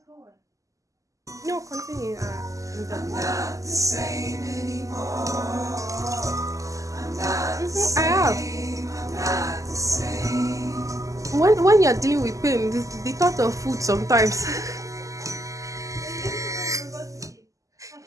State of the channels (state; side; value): late; left; 0.16 ms